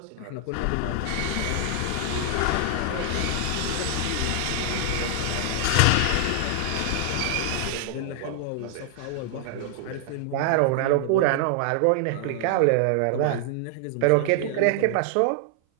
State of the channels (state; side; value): different; both; correlation 0.00